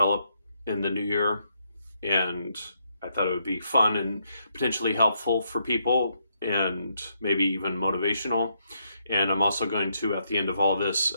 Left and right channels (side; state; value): both; inverted; correlation -0.77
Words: in the new year, and I thought it would be fun and potentially helpful for people and maybe even motivational. And I'm also going to, at the end of all this,